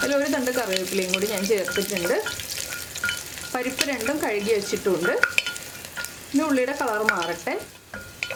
അതിൽ ഒരു തണ്ട് കറിവേപ്പിലയും കൂടി ഞാൻ ചേർത്തിട്ടുണ്ട്. പരിപ്പ് 2ഉം കഴുകി വെച്ചിട്ടുണ്ട്. ഇനി ഉള്ളിയുടെ കളർ മാറട്ടെ.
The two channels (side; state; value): both; identical; correlation 1.00